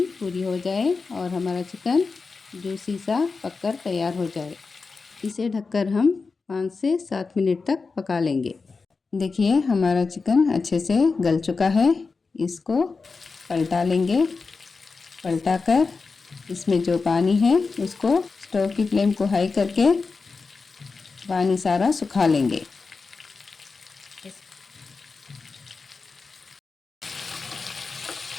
पूरी हो जाए और हमारा चिकन जूसी सा पककर तैयार हो जाए। इसे ढककर हम 5 से 7 मिनट तक पका लेंगे। देखिए, हमारा चिकन अच्छे से गल चुका है। इसको पलटा लेंगे। पलटाकर इसमें जो पानी है उसको स्टोव की फ्लेम को हाई करके पानी सारा सुखा लेंगे।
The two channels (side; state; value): right; quieter; 4.4 dB